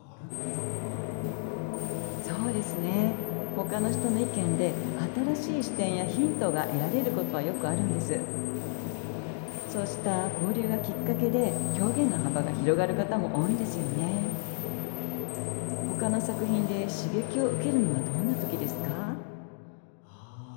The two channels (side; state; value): right; silent; digital silence